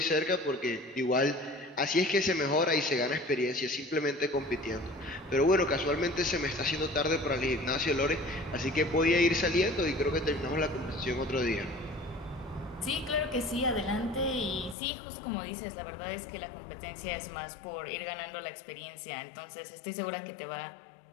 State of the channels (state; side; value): drops out; right; at 14.8 s